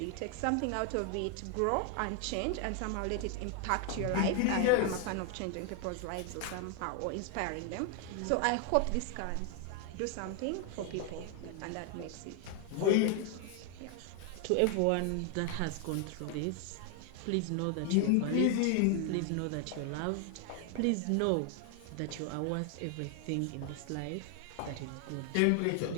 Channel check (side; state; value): both; different; correlation 0.00